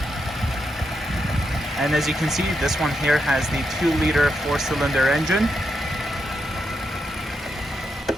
And as you can see, this one here has the 2-liter 4-cylinder engine.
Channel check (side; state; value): both; normal; correlation 0.83